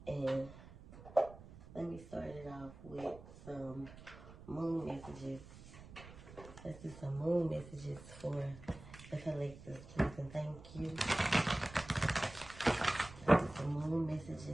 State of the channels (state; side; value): noise; right; rumble, 17 dB below the sound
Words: and let me start it off with some moon messages. Let's do some moon messages for the collective, please, and thank you. Some moon